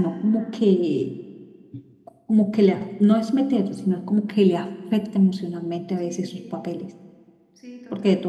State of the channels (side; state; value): both; identical; correlation 1.00